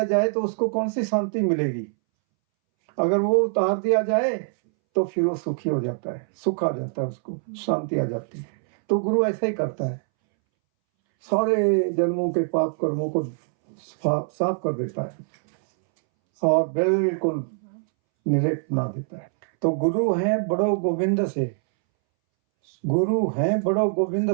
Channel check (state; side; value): silent; left; 63 dB below the other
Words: जाए तो उसको कौन सी शांति मिलेगी? अगर वो उतार दिया जाए तो फिर वो सुखी हो जाता है, सुख आ जाता है, उसको शांति आ जाती है। तो गुरु ऐसा ही करता है, सारे जन्मों के पाप कर्मों को साफ कर देता है और बिल्कुल निर्लेप बना देता है। तो गुरु हैं बड़ो गोविंद से, गुरु हैं बड़ो गोविंद